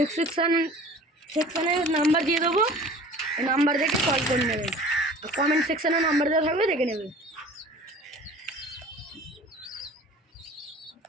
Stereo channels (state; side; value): normal; both; correlation 0.44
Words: সেকশানে নাম্বার দিয়ে দেবো, এই নাম্বার দেখে কল করে নেবেন, আর কমেন্ট সেকশানে নাম্বার দেওয়া থাকবে, দেখে নেবেন।